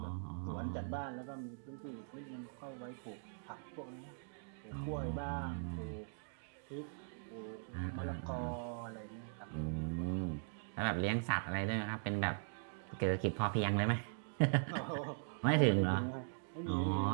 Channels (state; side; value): silent; left; digital silence